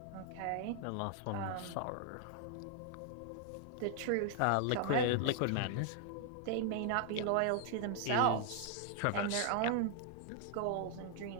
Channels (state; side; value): different; both; correlation 0.00